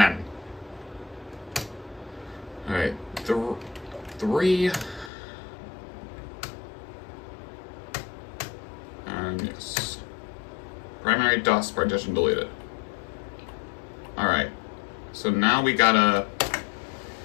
Alright, 3. And yes. Primary DOS partition deleted. Alright, so now we gotta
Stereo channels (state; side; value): drops out; right; at 5.1 s